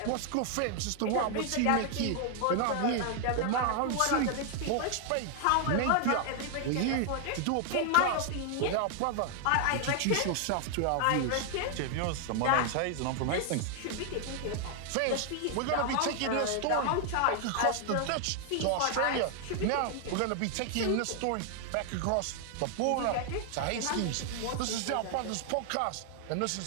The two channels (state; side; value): different; both; correlation 0.00